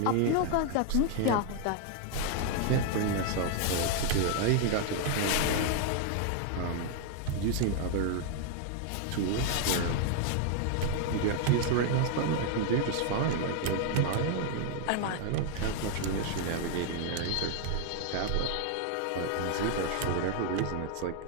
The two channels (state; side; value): different; both; correlation 0.00